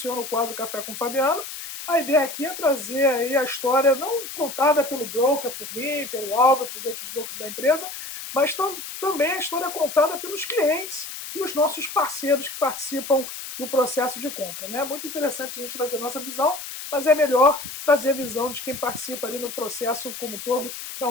o quadro Café com o Fabiano, a ideia aqui é trazer aí a história não contada pelo broker, por mim, pelo Álvaro, pelos outros brokers da empresa, mas também a história contada pelos clientes e os nossos parceiros que participam do processo de compra. É muito interessante a gente trazer a nossa visão, mas é melhor trazer a visão de quem participa ali no processo como um todo,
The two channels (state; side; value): noise; left; hiss, 9 dB below the sound